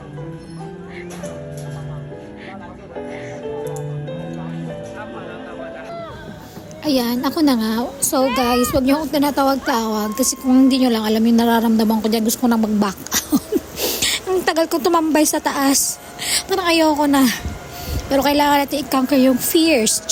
Ayan, ako na nga. So guys, huwag niyo akong tinatawag-tawag kasi kung hindi niyo lang alam yung nararamdaman ko dyan, gusto ko na mag-back out. Ang tagal ko tumambay sa taas. Parang ayoko na. Pero kailangan natin i-conquer yung fears.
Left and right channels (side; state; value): both; identical; correlation 1.00